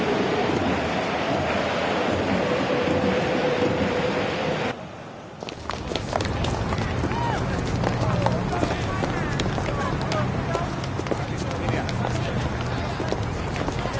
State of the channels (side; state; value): both; identical; correlation 1.00